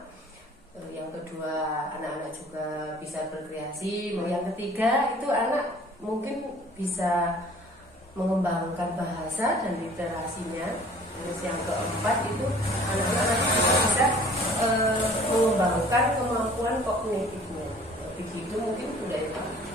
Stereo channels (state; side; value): normal; both; correlation 0.51